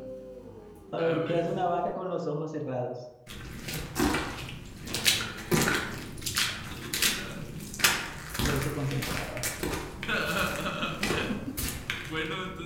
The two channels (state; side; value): identical; both; correlation 1.00